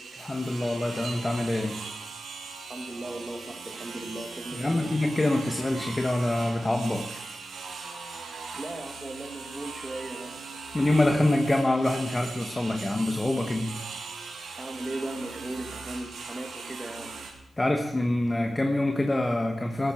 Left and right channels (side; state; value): both; normal; correlation 0.95